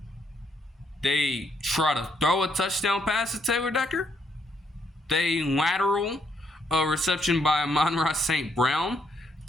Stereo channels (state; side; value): normal; both; correlation 0.74